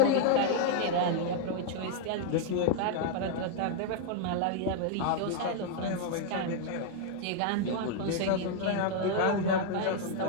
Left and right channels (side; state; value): both; different; correlation 0.00